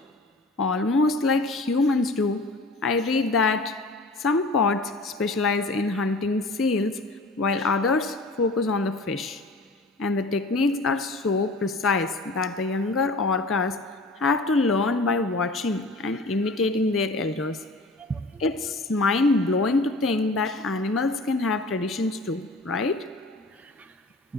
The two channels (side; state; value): both; normal; correlation 0.42